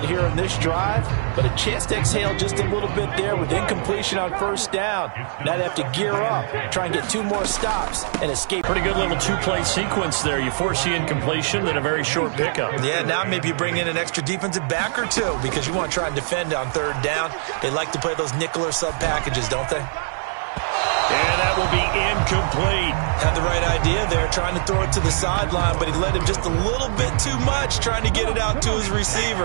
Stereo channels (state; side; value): silent; left; 57 dB below the other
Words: here in this drive, but a chance to exhale just a little bit there with incompletion on 1st down. Now they have to gear up, try and get 2 more stops, and escape. Pretty good little 2-play sequence there. You force the incompletion, then a very short pickup. Yeah, now maybe you bring in an extra defensive back or 2 because you want to try and defend on 3rd down. They like to play those nickel or sub packages, don't they? And that will be incomplete. Had the right idea there, trying to throw it to the sideline, but he led him just a little bit too much, trying to get it out to his